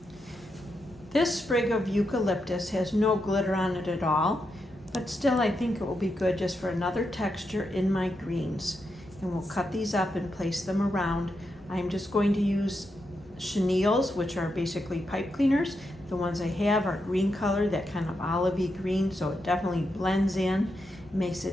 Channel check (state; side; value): normal; both; correlation 0.84